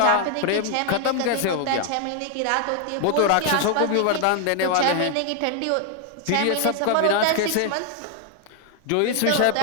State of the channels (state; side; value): different; both; correlation 0.00